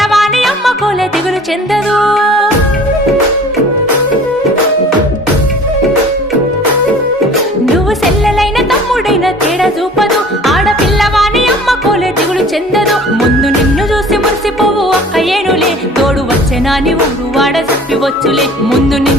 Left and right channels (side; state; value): both; normal; correlation 0.47